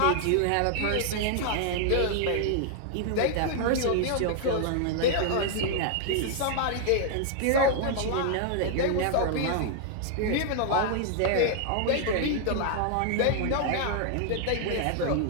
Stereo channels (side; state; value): both; different; correlation 0.00